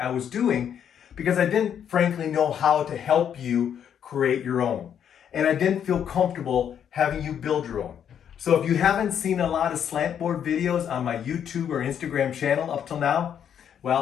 was doing because I didn't frankly know how to help you create your own. And I didn't feel comfortable having you build your own. So if you haven't seen a lot of slant board videos on my YouTube or Instagram channel up till now,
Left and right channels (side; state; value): right; quieter; 8.8 dB